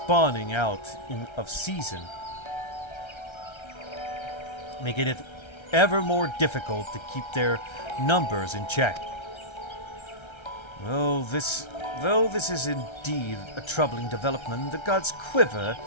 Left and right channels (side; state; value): right; late; 1.3 ms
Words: out of season, making it ever more difficult to keep their numbers in check. Though this is indeed a troubling development, the god's Quiver